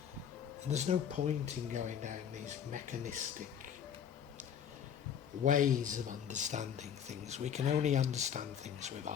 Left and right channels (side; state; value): right; quieter; 8.4 dB